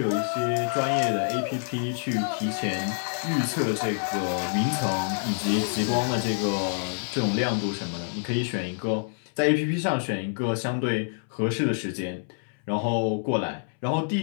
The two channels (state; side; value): silent; right; 60 dB below the other